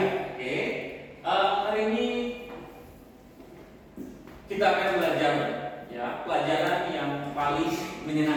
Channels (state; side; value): identical; both; correlation 1.00